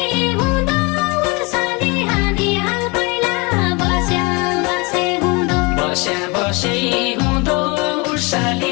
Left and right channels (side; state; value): right; quieter; 27.9 dB